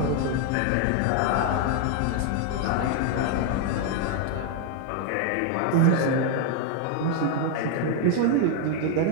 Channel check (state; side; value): different; both; correlation 0.00